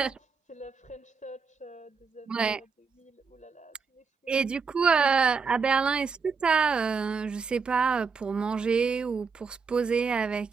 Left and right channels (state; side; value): quieter; left; 5.2 dB